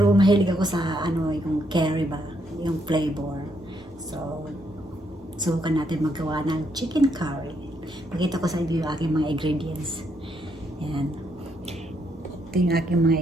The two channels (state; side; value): normal; both; correlation 0.75